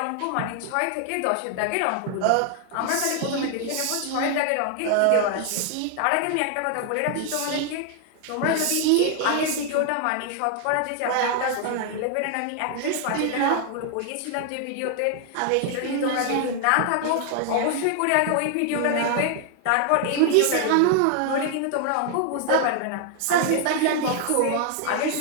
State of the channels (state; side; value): different; both; correlation 0.00